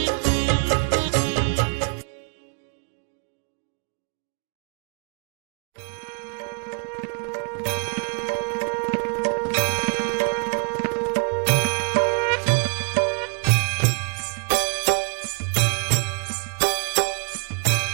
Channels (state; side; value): quieter; left; 38.3 dB